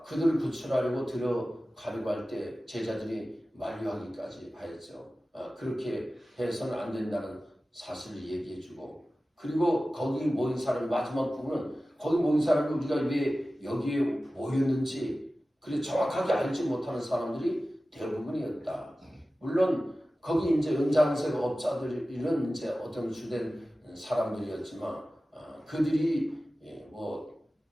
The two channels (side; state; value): both; normal; correlation 0.96